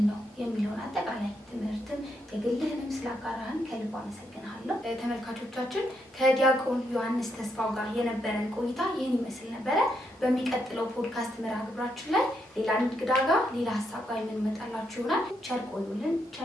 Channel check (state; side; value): normal; both; correlation 0.79